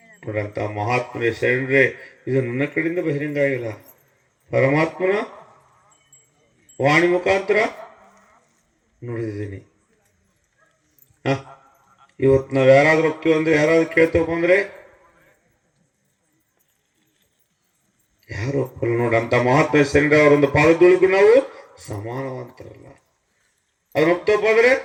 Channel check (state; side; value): identical; both; correlation 1.00